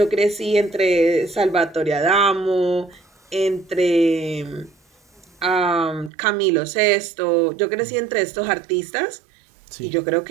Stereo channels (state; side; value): drops out; left; at 6.1 s